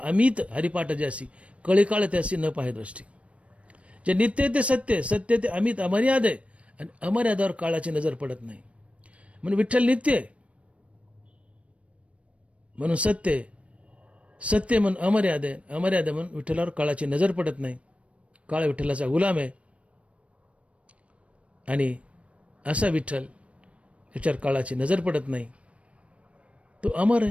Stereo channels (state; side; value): late; left; 0.063 ms